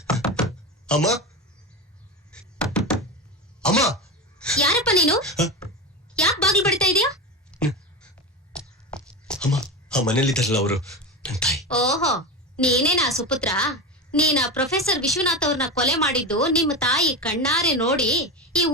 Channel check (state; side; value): normal; both; correlation 0.21